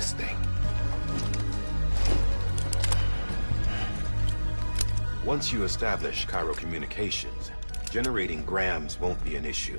thing. Once you establish Cairo communications, generating grams won't be an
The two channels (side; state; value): both; inverted; correlation -1.00